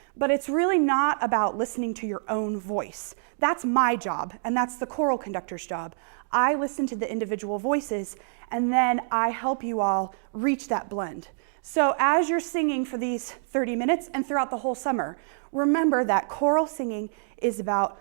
But it's really not about listening to your own voice. That's my job, and that's the choral conductor's job. I listen to the individual voices, and then I help you all reach that blend. So as you're singing for these 30 minutes and throughout the whole summer, remember that choral singing is about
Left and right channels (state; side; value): silent; left; digital silence